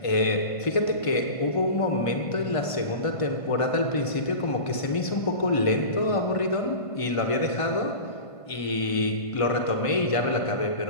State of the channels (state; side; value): late; right; 1.5 ms